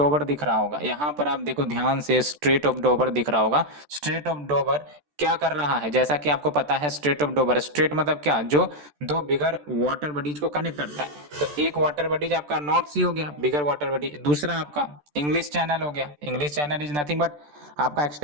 दिख रहा होगा, यहां पर आप देखो ध्यान से, स्ट्रेट ऑफ डोवर दिख रहा होगा। स्ट्रेट ऑफ डोवर क्या कर रहा है? जैसा कि आपको पता है, स्ट्रेट ऑफ डोवर, स्ट्रेट मतलब क्या? जो दो बिगर वाटर बॉडीज को कनेक्ट करता है। तो एक वाटर बॉडीज आपका नॉर्थ सी हो गया, बिगर वाटर बॉडी। दूसरा आपका इंग्लिश चैनल हो गया। English channel is nothing but आपका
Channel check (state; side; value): late; left; 14 ms